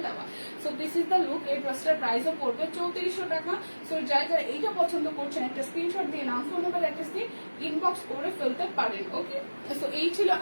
দেওয়া। So this is the look. এই ড্রেসটার প্রাইসও পড়বে 3400 টাকা। সো যারা এইটা পছন্দ করছেন একটা স্ক্রিনশট দিয়ে নাম ফোন নাম্বার অ্যাড্রেস দিয়ে ইনবক্স করে ফেলতে পারেন, ওকে। সো এই ছিল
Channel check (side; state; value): both; inverted; correlation -1.00